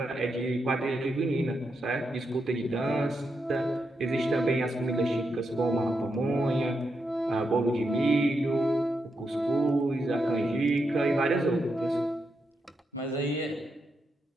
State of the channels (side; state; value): both; normal; correlation 0.84